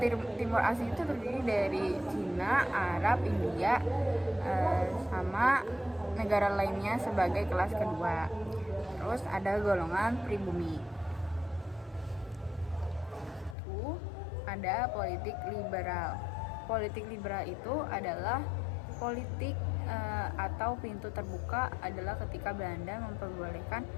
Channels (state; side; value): drops out; right; at 13.6 s